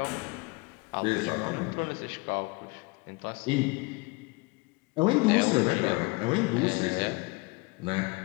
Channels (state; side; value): quieter; right; 25.9 dB